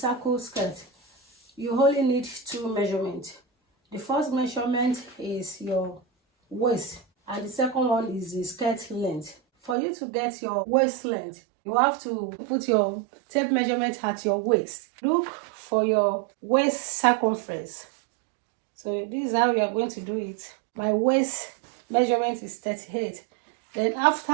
skirt, you only need two measurements. The first measurement is your waist and the second one is the skirt length. For you to get your waist length, you have to put your tape measurement at your waist. Look for your waist circumference. So this is how we are going to do it. My waist measurement is 38. Then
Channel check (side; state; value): left; drops out; at 9.8 s